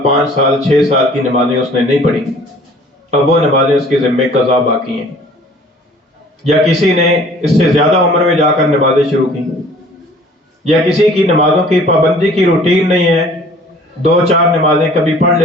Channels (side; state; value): both; normal; correlation 0.52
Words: 5 سال 6 سال کی نمازیں اس نے نہیں پڑھی، اب وہ نمازیں اس کے ذمے قضا باقی ہیں۔ یا کسی نے اس سے زیادہ عمر میں جا کر نمازیں شروع کی، یا کسی کی نمازوں کی پابندی کی روٹین نہیں ہے، 2-4 نمازیں کبھی پڑھ